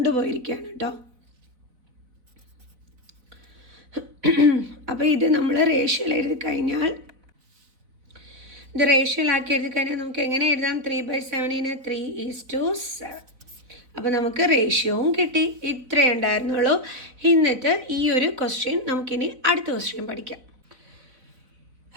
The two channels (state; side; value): late; left; 4.0 ms